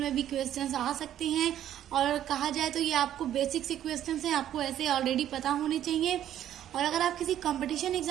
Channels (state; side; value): quieter; left; 11.3 dB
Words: भी क्वेश्चंस आ सकते हैं और कहा जाए तो ये आपको बेसिक से क्वेश्चंस हैं, आपको ऐसे ऑलरेडी पता होने चाहिए। और अगर आप किसी कंपटीशन